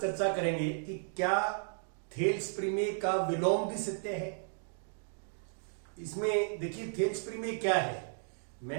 करेंगे कि क्या थेल्स प्रमेय का विलोम भी सत्य है। इसमें देखिए थेल्स प्रमेय क्या है।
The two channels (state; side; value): silent; left; digital silence